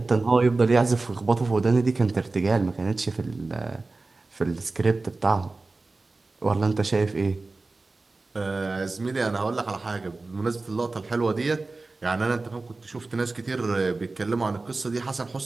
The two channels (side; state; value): left; quieter; 3.5 dB